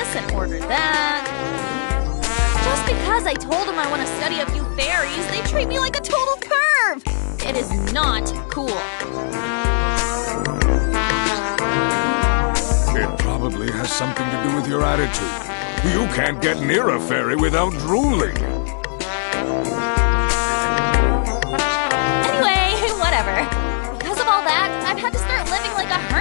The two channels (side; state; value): right; silent; digital silence